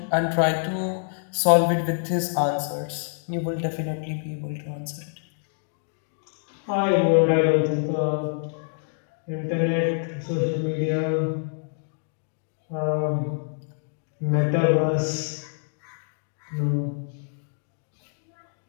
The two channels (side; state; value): right; silent; digital silence